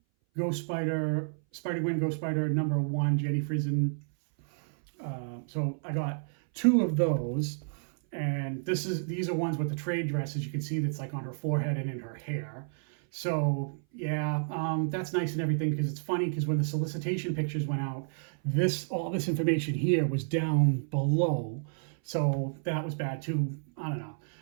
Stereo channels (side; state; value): left; silent; 57 dB below the other